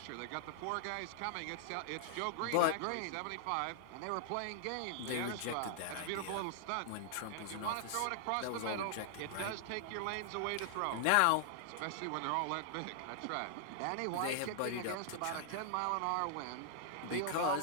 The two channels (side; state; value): both; different; correlation -0.01